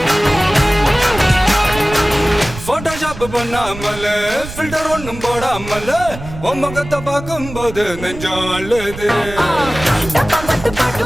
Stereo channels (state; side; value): noise; right; rumble, 12 dB below the sound